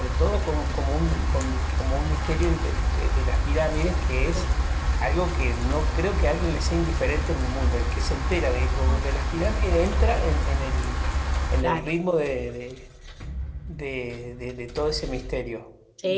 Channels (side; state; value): both; identical; correlation 1.00